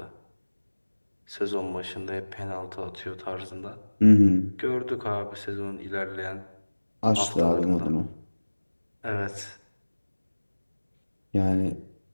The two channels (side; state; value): both; inverted; correlation -1.00